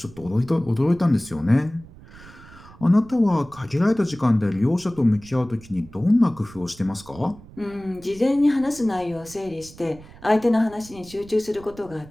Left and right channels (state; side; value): noise; right; rumble, 20 dB below the sound